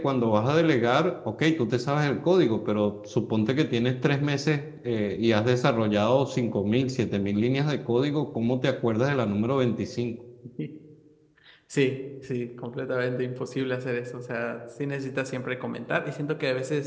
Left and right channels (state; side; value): identical; both; correlation 1.00